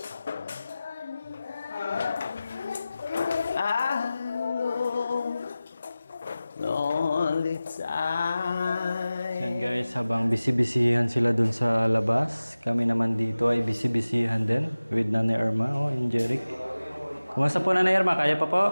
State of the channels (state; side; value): inverted; both; correlation -0.97